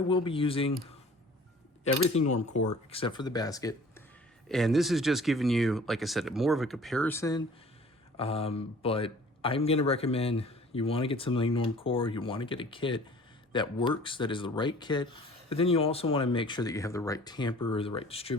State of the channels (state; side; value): normal; both; correlation 0.49